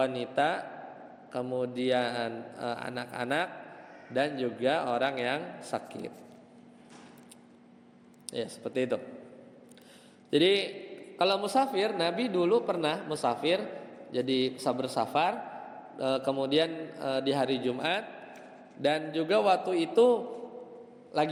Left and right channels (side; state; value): both; identical; correlation 1.00